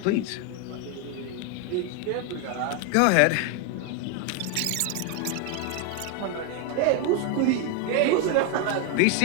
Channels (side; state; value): both; different; correlation 0.01